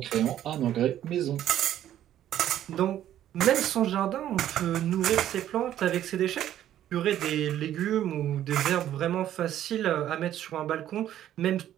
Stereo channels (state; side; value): quieter; left; 11.7 dB